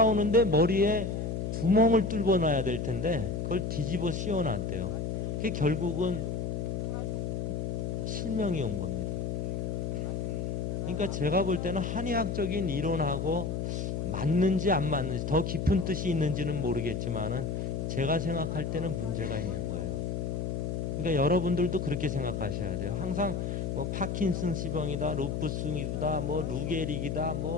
머리에 구멍을 뚫어 놔야 될 텐데 그걸 뒤집어 씌워 놨대요. 그게 결국은 실명이 온 겁니다. 그러니까 제가 볼 때는 한의학적인 이론하고 맞는지 안 맞는지 더 깊은 뜻이 있는지는 모르겠지만은 제가 생각할 때는 문제가 있는 거예요. 그러니까 여러분들도 그렇게 생각하셔야 돼요. 항상 뭐 파킨슨스병이다, 루푸스이다, 뭐 루게릭이다,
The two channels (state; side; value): noise; left; hum, 2 dB below the sound